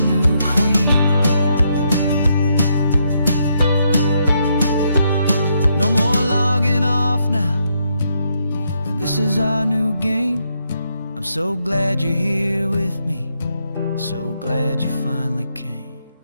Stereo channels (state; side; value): inverted; both; correlation -0.77